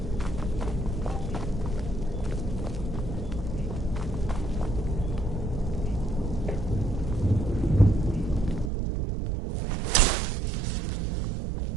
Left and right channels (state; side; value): drops out; left; at 8.7 s